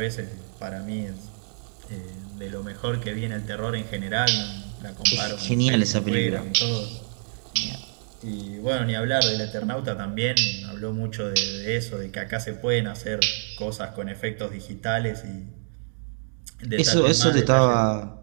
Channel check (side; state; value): left; silent; digital silence